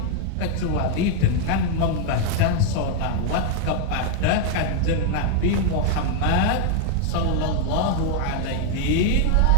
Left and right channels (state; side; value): different; both; correlation 0.00